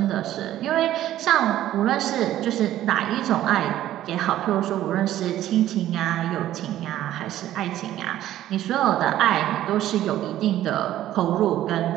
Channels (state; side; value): quieter; left; 13.1 dB